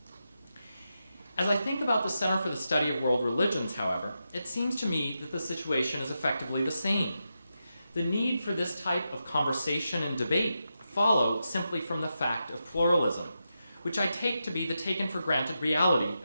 As I think about the Center for the Study of World Religions, however, it seems to me that the situation is effectively the same. The need for this type of conversation and debate follow simply from the fact of pluralism, which I take to be the taken-for-granted reality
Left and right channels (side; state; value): both; inverted; correlation -0.88